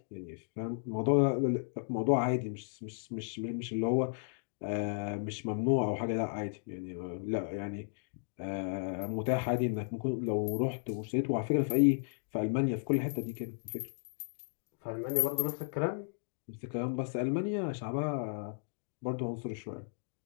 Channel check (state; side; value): silent; right; digital silence